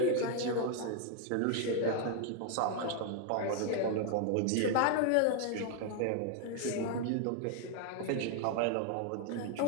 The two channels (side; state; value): both; different; correlation 0.00